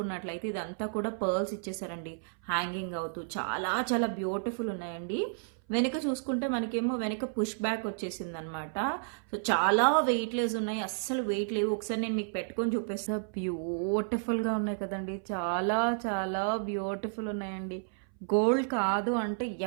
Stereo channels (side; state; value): left; silent; 57 dB below the other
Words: ఇదంతా కూడా పర్ల్స్ ఇచ్చేసారండి హ్యాంగింగ్ అవుతూ. చాలా చాలా బ్యూటిఫుల్ ఉన్నాయండి. వెనుక చూసుకుంటే మనకేమో వెనుక పుష్ బ్యాక్ వచ్చేసింది అనమాట. సో చాలా వెయిట్ లెస్ ఉన్నాయి, అస్సలు వెయిట్ లేవు. ఒకసారి నేను మీకు పెట్టుకొని చూపిస్తా. బ్యూటిఫుల్గా ఉన్నాయి కదండి, చాలా చాలా బ్యూటిఫుల్ ఉన్నాయండి. గోల్డ్ కాదు అంటే